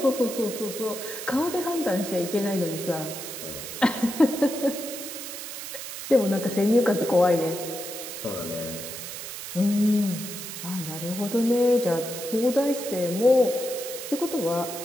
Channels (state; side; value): noise; right; hiss, 9 dB below the sound